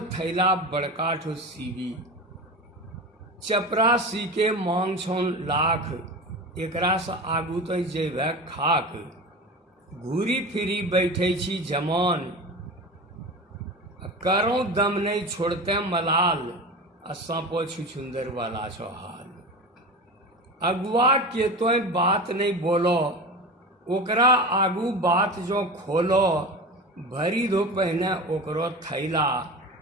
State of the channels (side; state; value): both; normal; correlation 0.29